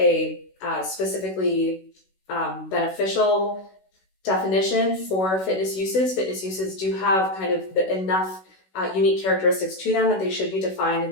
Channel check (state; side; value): late; right; 16 ms